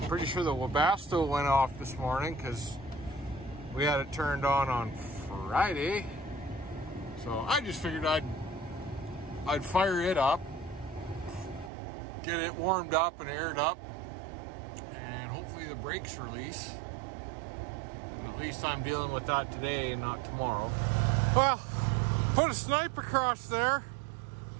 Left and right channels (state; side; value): drops out; left; at 11.7 s